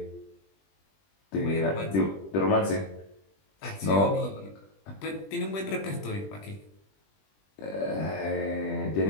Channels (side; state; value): right; late; 20 ms